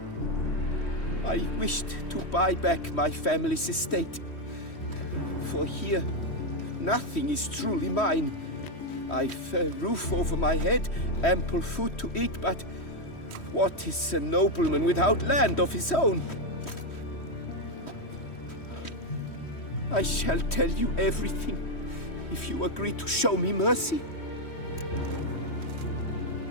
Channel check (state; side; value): late; right; 3.1 ms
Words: I wished to buy back my family's estate. For here, nothing is truly mine. I've a roof over my head, ample food to eat, but what is a nobleman without land of his own? I shall tell you everything, if you agree to show me mercy.